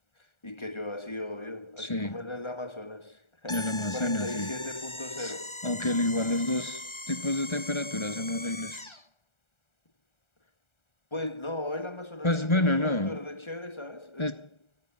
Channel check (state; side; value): late; right; 1.3 ms